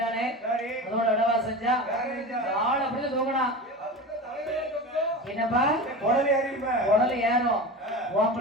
அதோட இடவா செஞ்சா ஆள் அப்படி தூங்கினா என்னப்பா உடல் ஏறும் உன்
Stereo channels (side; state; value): both; normal; correlation 0.29